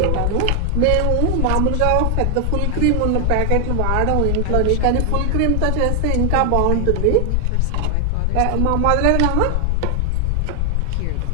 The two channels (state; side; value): different; both; correlation 0.00